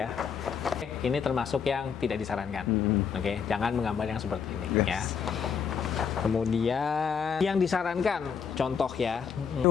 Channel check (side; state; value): right; quieter; 6.7 dB